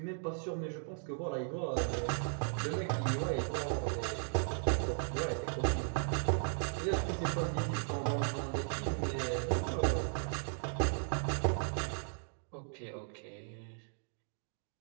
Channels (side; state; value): left; silent; digital silence